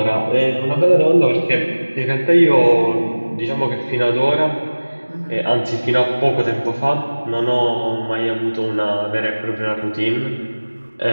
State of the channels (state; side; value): inverted; both; correlation -1.00